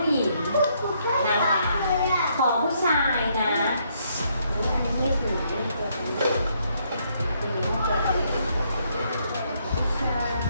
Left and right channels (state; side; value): inverted; both; correlation -0.72